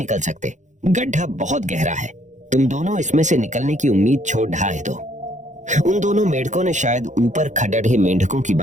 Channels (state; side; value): late; left; 0.35 ms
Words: सकते, गड्ढा बहुत गहरा है, तुम दोनों इसमें से निकलने की उम्मीद छोड़ ढाए दो। उन दोनों मेंढकों ने शायद ऊपर खड़े मेंढकों की